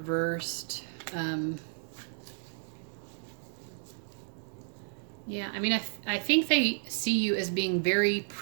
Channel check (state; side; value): silent; left; digital silence